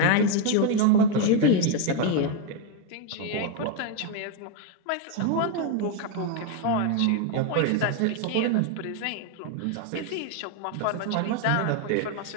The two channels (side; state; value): both; different; correlation 0.01